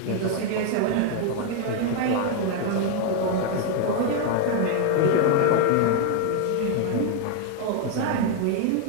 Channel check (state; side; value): different; both; correlation 0.01